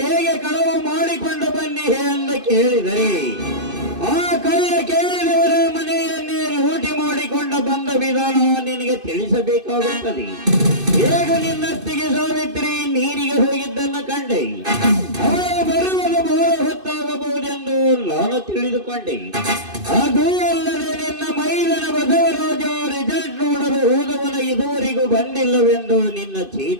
ಹೇಗೆ ಕಳವು ಮಾಡಿಕೊಂಡು ಬನ್ನಿ ಎಂದು ಕೇಳಿದರೆ ಆ ಕಳ್ಳ ಕೇಳಿದವರ ಮನೆಯನ್ನೇ ಲೂಟಿ ಮಾಡಿಕೊಂಡು ಬಂದ ವಿಧಾನ ನಿನಗೆ ತಿಳಿಸಬೇಕಾಗುತ್ತದೆ. ಹೇಗೆ ನಿನ್ನತ್ತಿಗೆ ಸಾವಿತ್ರಿ ನೀರಿಗೆ ಹೋಗಿದ್ದನ್ನು ಕಂಡೆ, ಅವಳು ಬರುವುದು ಬಹಳ ಹೊತ್ತಾಗಬಹುದೆಂದು ನಾನು ತಿಳಿದುಕೊಂಡೆ. ಅದು ಅಲ್ಲದೆ ನಿನ್ನ ಮೈದನ ಬಸವರಾಜ ರಿಸಲ್ಟ್ ನೋಡಲು ಹೋದವನ ಇದುವರೆಗೂ ಬಂದಿಲ್ಲವೆಂದು ನಿನ್ನ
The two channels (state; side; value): late; left; 2.6 ms